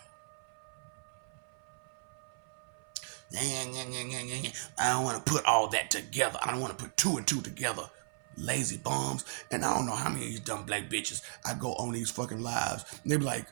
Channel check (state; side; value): silent; left; 54 dB below the other